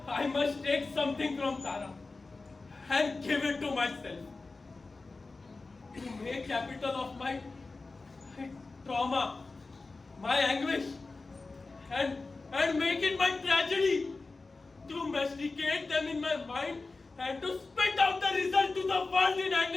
I must take something from Tara and give it to myself. To make capital of my trauma, my anguish, and make it my tragedy. To masticate them in my mind and to spit out the result to the world in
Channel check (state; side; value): quieter; right; 3.7 dB